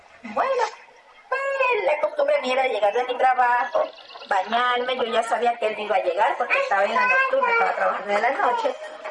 Bueno, pues la costumbre mía era llegar de mi trabajo, bañarme, yo ya sabía que él iba a llegar porque estaba en la nocturna, estaba trabajando de la noche.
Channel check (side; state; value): both; identical; correlation 1.00